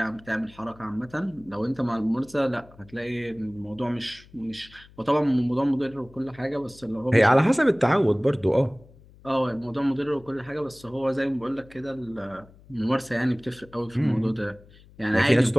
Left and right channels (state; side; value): noise; left; hum, 24 dB below the sound